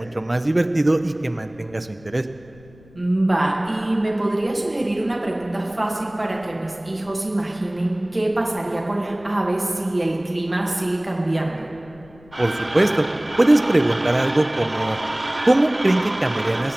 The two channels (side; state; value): left; noise; rumble, 25 dB below the sound